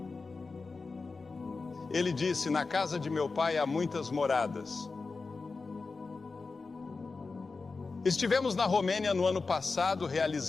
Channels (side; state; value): right; quieter; 4.1 dB